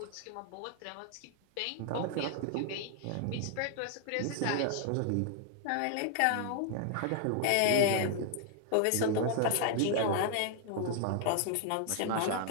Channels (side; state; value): both; different; correlation 0.00